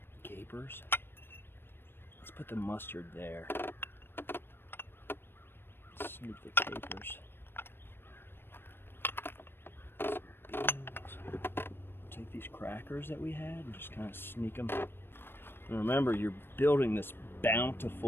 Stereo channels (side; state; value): right; late; 0.10 ms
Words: Capers. Let's put the mustard there. Snoop the capers. Some beans. Take these crackers that we had and just kind of sneak them. And remember, you're building this